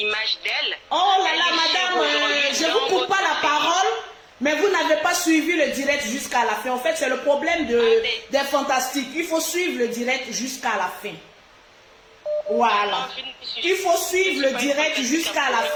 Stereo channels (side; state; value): both; identical; correlation 1.00